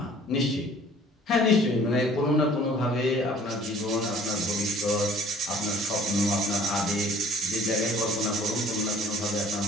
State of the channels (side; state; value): both; normal; correlation 0.53